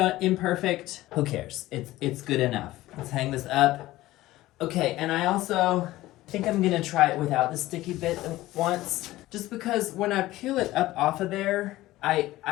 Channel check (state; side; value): quieter; right; 16.8 dB